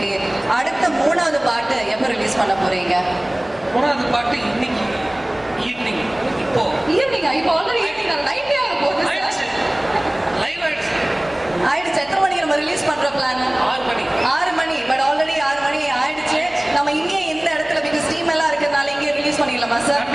அடுத்த 3வது பாட்டு எப்போ ரிலீஸ் பண்ண போறீங்க? 3வது பாட்டு இன்னைக்கு ஈவினிங். இப்போ ஈவினிங்கா? இப்போ ஆல்ரெடி ஈவினிங் நைட்டே ஆக போகுது. ஆயிடுச்சு, லைவ் ஆயிடுச்சு. ஆயிடுச்சு. எத்தனை மணிக்கு நம்ம ரிலீஸ் பண்ற பிளான்? 6 மணி. 6 மணி. பட் ஆல்ரெடி 6 மணி ஆயிடுச்சு. நம்ம இங்கே இந்த இடத்துல பிகாஸ் ஸ்ட்ரீம் எல்லாம் இருக்கிறதுனால இங்கே ரிலீஸ் பண்ணிடலாமா சார்?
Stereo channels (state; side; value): noise; left; hum, 25 dB below the sound